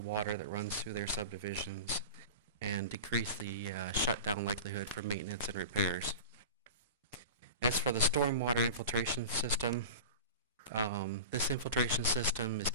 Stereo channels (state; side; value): inverted; both; correlation -0.32